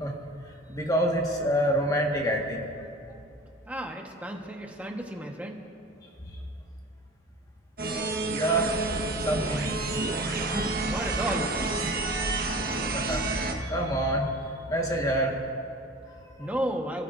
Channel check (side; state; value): both; normal; correlation 0.39